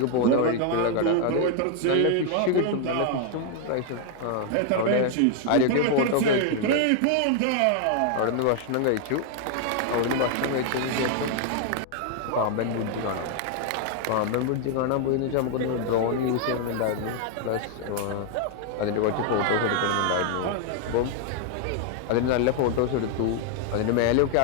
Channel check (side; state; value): both; different; correlation 0.00